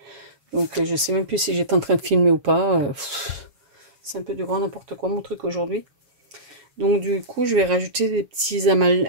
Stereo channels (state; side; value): late; left; 7.1 ms